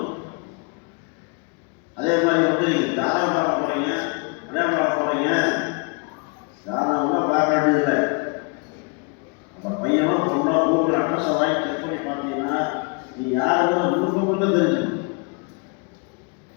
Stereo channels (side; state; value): right; quieter; 34.7 dB